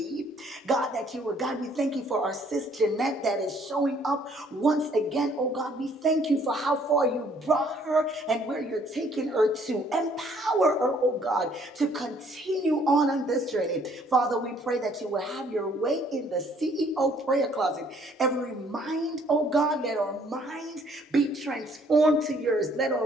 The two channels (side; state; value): both; normal; correlation 0.62